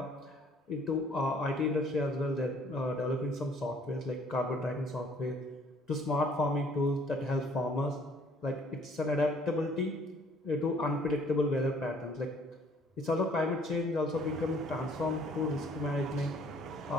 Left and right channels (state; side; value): normal; both; correlation 0.59